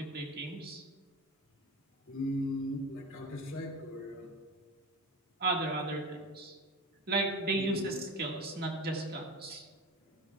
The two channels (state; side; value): normal; both; correlation 0.29